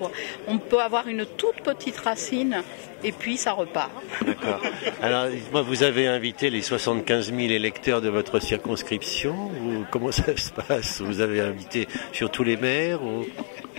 On peut avoir une toute petite racine et puis ça repart. D'accord. Alors, moi, vous avez invité les 75 000 électeurs de votre circonscription, ou comment ça se passe? Vous avez invité sur tous les maires ou...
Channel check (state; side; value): silent; right; 61 dB below the other